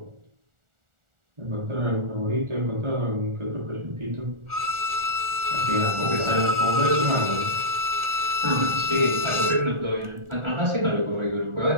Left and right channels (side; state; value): left; late; 1.4 ms